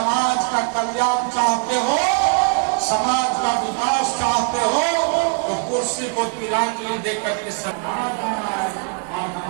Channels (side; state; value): left; quieter; 39.7 dB